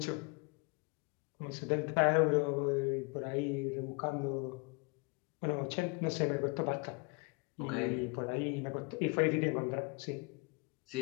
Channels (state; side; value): quieter; right; 30.4 dB